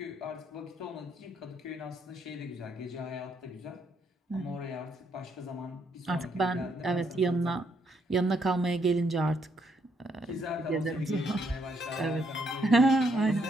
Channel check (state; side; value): normal; both; correlation 0.73